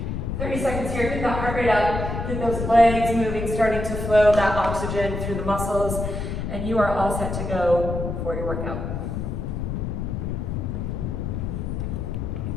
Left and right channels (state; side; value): noise; left; rumble, 3 dB below the sound